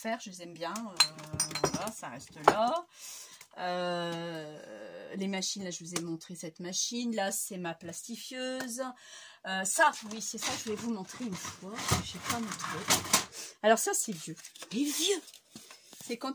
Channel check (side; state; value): both; identical; correlation 1.00